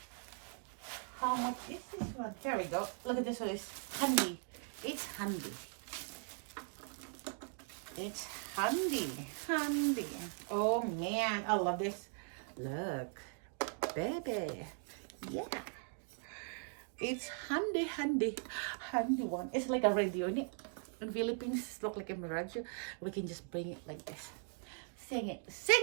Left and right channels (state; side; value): silent; left; 51 dB below the other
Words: how much is this one? Here we go. Look at this one. It's handy. It's handy. Oh man, I love this. Look, baby. Yeah. It's handy one. It's like a radio in it. In Philippines, look like a radio. We can just bring it like this. Sing